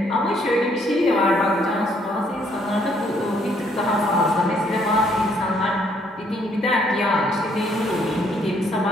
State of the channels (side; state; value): both; normal; correlation 0.67